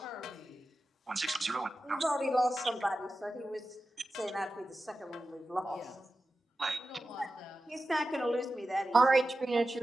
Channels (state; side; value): normal; both; correlation 0.93